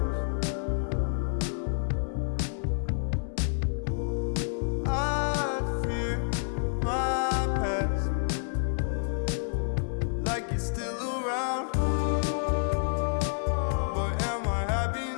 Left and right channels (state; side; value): silent; right; 59 dB below the other